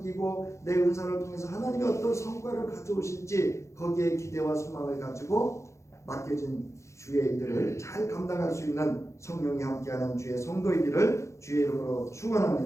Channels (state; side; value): late; right; 0.14 ms